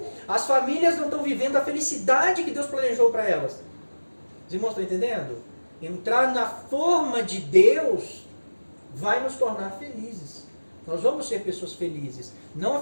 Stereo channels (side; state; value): both; inverted; correlation -1.00